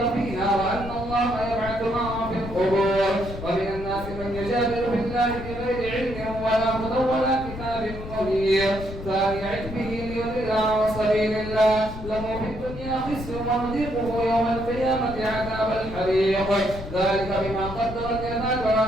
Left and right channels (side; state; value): left; noise; rumble, 10 dB below the sound